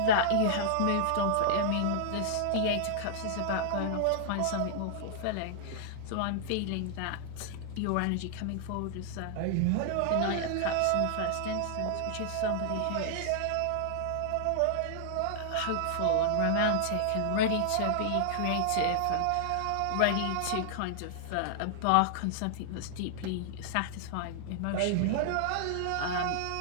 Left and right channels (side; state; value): both; different; correlation -0.01